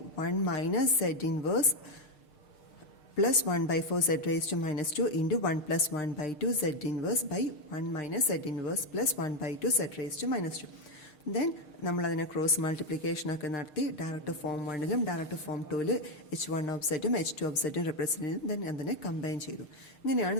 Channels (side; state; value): right; late; 6.6 ms